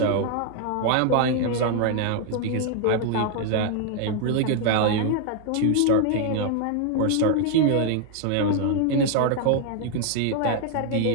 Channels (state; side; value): different; both; correlation 0.00